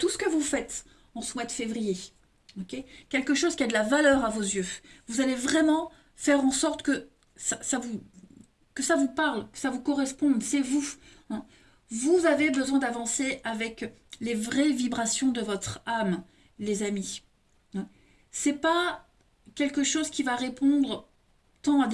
ce que vous faites en ce mois de février. Okay, quelque chose qui a de la valeur à vos yeux. Vous allez vraiment faire en sorte que que ça vous parle, que ça vous corresponde. C'est vous, hein. Vous avez besoin d'avancer avec les vraies vibrations de votre âme, les amis, hein. C'est pas quelque chose qui va répondre tant à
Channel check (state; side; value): identical; both; correlation 1.00